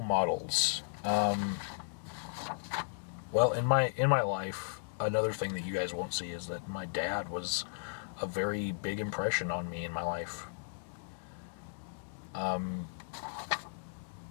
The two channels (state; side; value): silent; right; digital silence